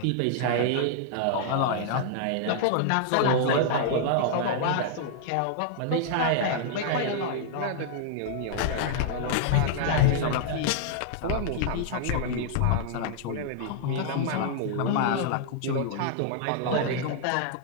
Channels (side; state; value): both; different; correlation -0.01